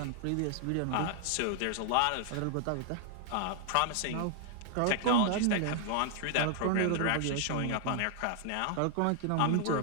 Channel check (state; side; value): different; both; correlation 0.00